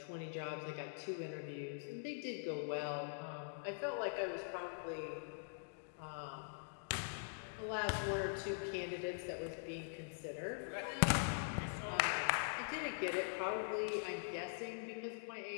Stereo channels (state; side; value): silent; right; digital silence